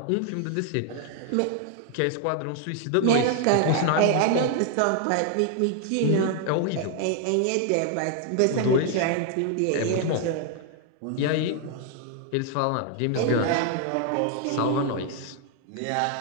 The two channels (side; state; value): both; different; correlation 0.00